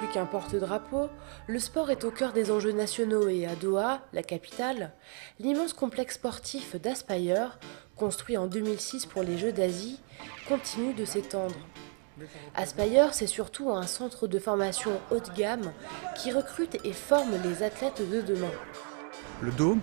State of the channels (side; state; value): left; quieter; 39.4 dB